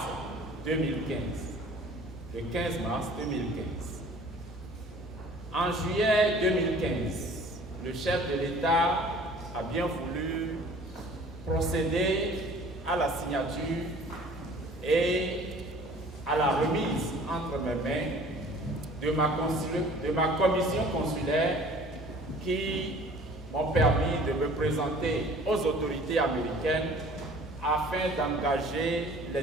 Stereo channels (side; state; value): both; normal; correlation 0.49